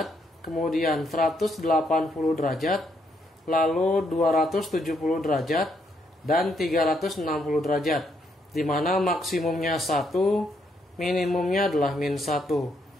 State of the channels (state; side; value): normal; both; correlation 0.75